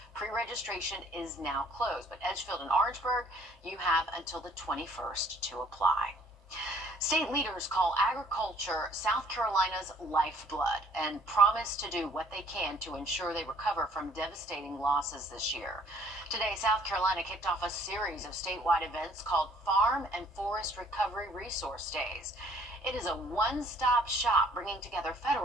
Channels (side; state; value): both; normal; correlation 0.59